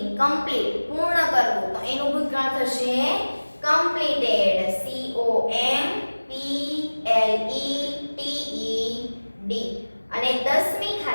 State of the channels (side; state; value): both; inverted; correlation -1.00